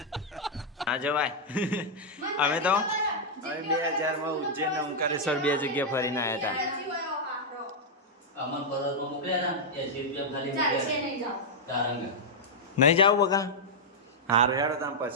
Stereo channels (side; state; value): both; normal; correlation -0.05